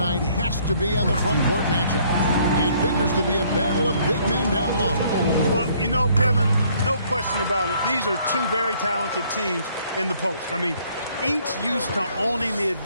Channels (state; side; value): inverted; both; correlation -0.63